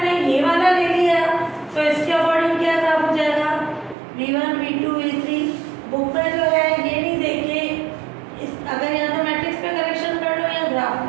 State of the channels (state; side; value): drops out; left; at 4.0 s